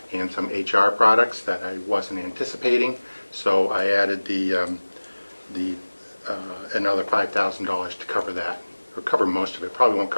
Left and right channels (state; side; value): inverted; both; correlation -1.00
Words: and some HR products that I wasn't anticipating. So I added another $5,000 to cover that, or cover most of it. Probably won't